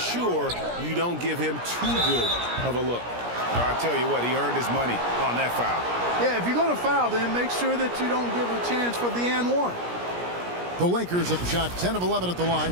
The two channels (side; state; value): left; late; 17 ms